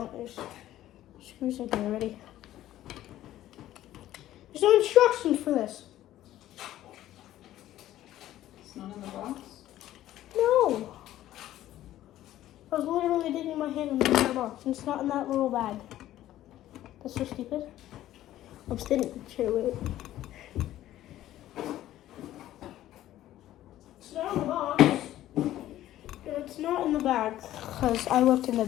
There's screws in here already. There's no instructions for this. It's not in the box? No. I was literally digging my hand in the entire box. And it's not in that little bag. That's so stupid. I'm sitting here with it. It's not in the box. It's not in the bag. Because I looked in the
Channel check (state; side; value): quieter; right; 13.7 dB